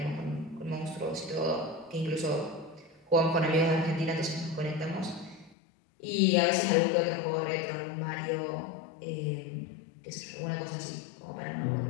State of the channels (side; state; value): right; drops out; at 5.6 s